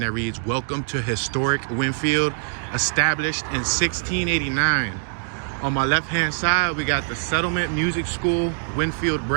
reads, "Welcome to historic Wynnefield, established in 1689. On my left-hand side, we got the Settlement Music School Wynnefield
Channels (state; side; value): silent; left; digital silence